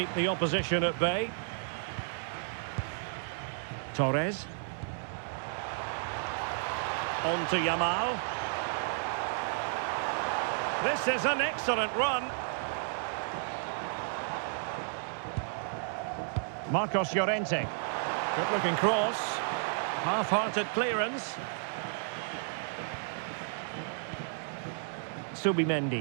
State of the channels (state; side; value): silent; left; 56 dB below the other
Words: the opposition at bay. Torres. On to Yamal. This is an excellent run. Marcos Llorente. Good looking cross. Half-hearted clearance.